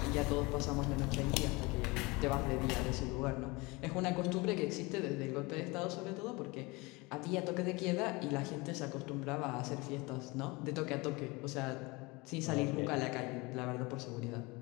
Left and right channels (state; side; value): quieter; right; 24.8 dB